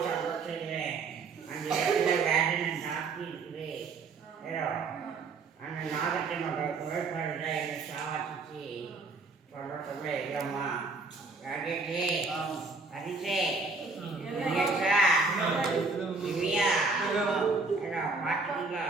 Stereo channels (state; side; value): quieter; left; 4.0 dB